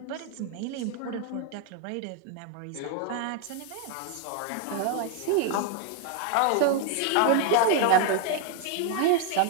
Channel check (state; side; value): different; both; correlation 0.00